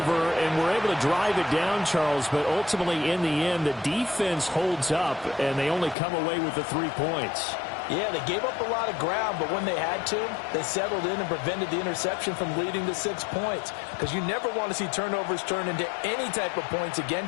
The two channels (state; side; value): drops out; right; at 6.0 s